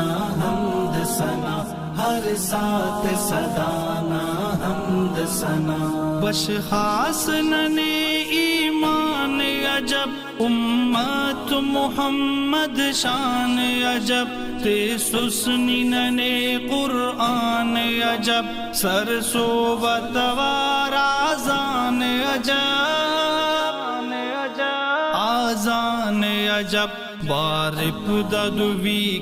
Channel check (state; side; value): identical; both; correlation 1.00